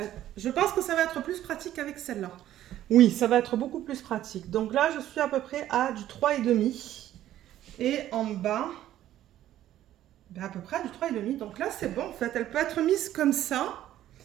être plus pratique avec celle-là. Oui, ça va être beaucoup plus pratique. Donc là, je suis à peu près à du 3,5. Et en bas, ben à peu près à du 3,5. Donc là, c'est bon en fait. Elle peut être mise comme ça.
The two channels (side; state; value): left; quieter; 12.8 dB